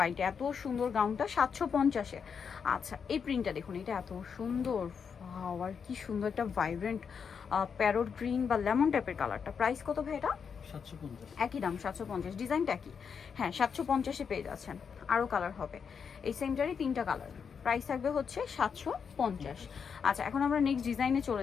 এত সুন্দর গাউনটা 750-এ। আচ্ছা, এই প্রিন্টটা দেখুন, এটা এত সুন্দর। আর কি সুন্দর একটা ভাইব্রেন্ট প্যারোট গ্রিন বা লেমন টাইপের কালারটা। প্রাইস কত ভাই এটা? 750। একই দাম 750। ডিজাইনটা কি? হ্যাঁ, 750-এ পেয়ে যাচ্ছেন। আরও কালার হবে এই সেমটারই 3টা কালার। প্রাইস থাকবে হচ্ছে 750। আচ্ছা, এখন আমরা নেক্সট ডিজাইনে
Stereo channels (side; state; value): right; quieter; 6.5 dB